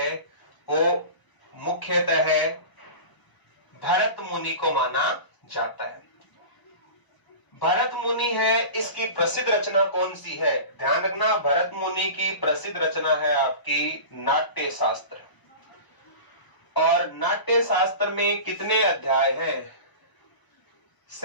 वो मुख्यतः है भरत मुनि को माना जाता है। भरत मुनि है, इसकी प्रसिद्ध रचना कौन सी है, ध्यान रखना, भरत मुनि की प्रसिद्ध रचना है आपकी नाट्य शास्त्र। और नाट्य शास्त्र में कितने अध्याय हैं,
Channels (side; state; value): right; late; 1.0 ms